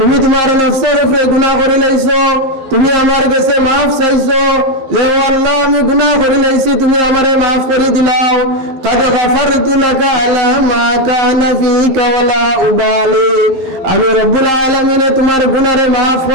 তোমার নফসের উপরে গুনাহ করে লাইছো, তুমি আমার কাছে মাফ চাইছো যে ও আল্লাহ আমি গুনাহ করে লাইছি, তুমি আমারে মাফ করে দিলাও। কাদ গফারতু লাকা আলা মা কানা ফীকা ওয়ালা উবালি, আমি রব্বুল আলামিন তোমার গুনাহরে মাফ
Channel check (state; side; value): late; left; 11 ms